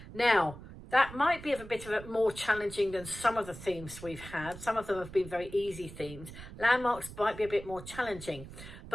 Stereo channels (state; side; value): noise; right; rumble, 14 dB below the sound